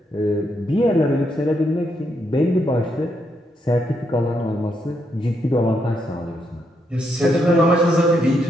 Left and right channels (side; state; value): both; normal; correlation 0.78